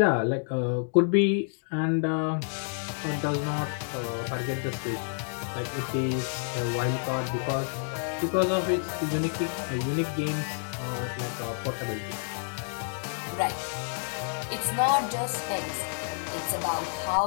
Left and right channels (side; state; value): right; silent; digital silence